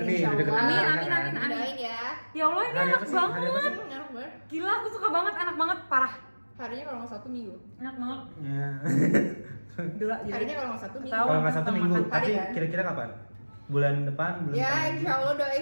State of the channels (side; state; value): both; inverted; correlation -1.00